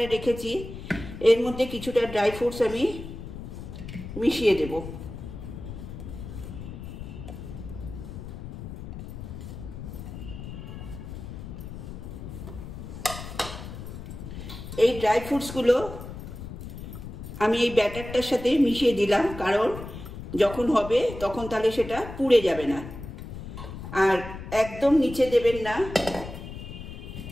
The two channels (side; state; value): left; noise; rumble, 10 dB below the sound